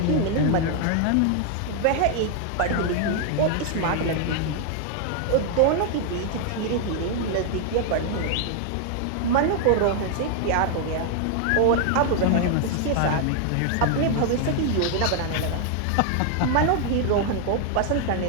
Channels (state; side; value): different; both; correlation 0.00